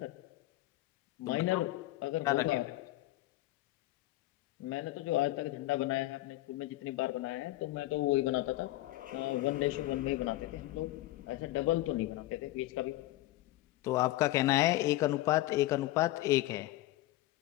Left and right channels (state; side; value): quieter; right; 17.0 dB